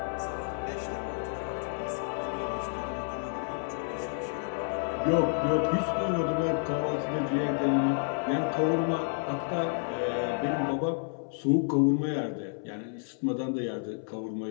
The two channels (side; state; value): right; silent; 58 dB below the other